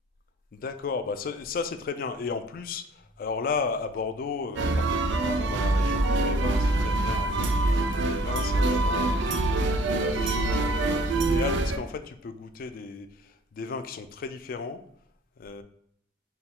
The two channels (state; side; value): normal; both; correlation 0.53